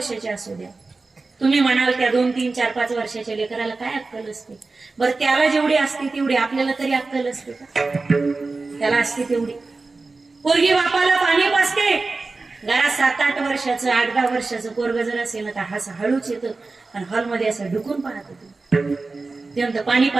असू द्या, तुम्ही म्हणाल त्या 2-3, 4-5 वर्षाच्या लेकराला काय अक्कल असते, बरं त्याला जेवढी असते तेवढी आपल्याला तरी अक्कल असते का, त्याला असते तेवढी। पोरगी बापाला पाणी पाजते, घरात 7-8 वर्षाचं 8-10 वर्षाचं पोरग जर असेल ना तर असं हळूच येतं, आणि हॉलमध्ये असं ढुकून पाहत होतं, ते म्हणतं पाणी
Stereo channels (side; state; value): left; quieter; 3.7 dB